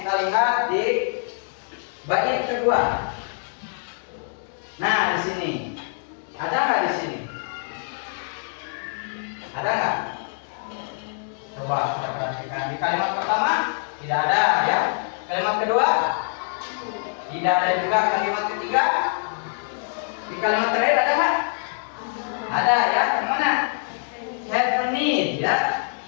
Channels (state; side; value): silent; right; 60 dB below the other